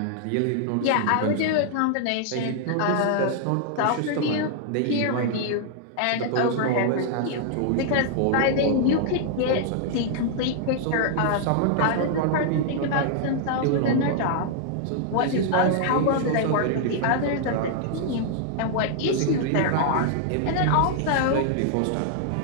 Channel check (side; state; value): both; different; correlation -0.01